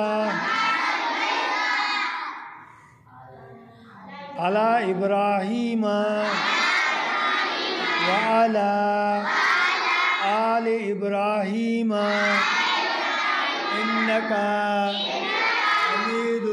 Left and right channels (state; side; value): identical; both; correlation 1.00